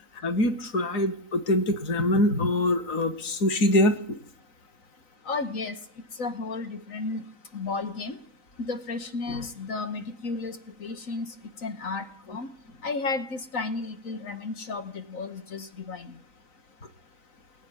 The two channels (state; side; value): late; right; 3.9 ms